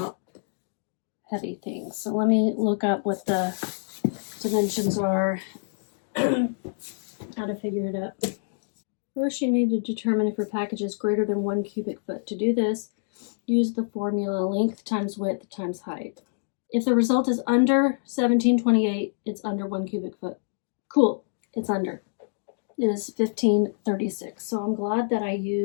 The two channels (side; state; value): right; silent; digital silence